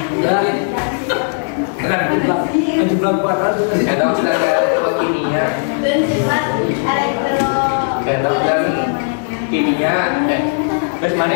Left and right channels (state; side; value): silent; right; digital silence